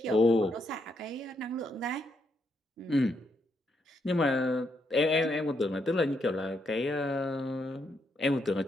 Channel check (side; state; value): both; normal; correlation 0.78